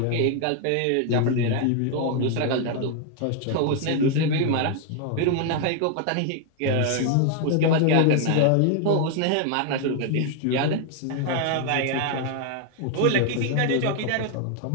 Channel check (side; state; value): both; different; correlation 0.00